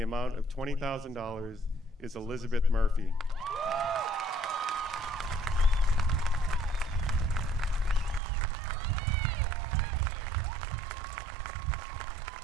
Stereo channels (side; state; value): left; drops out; at 8.2 s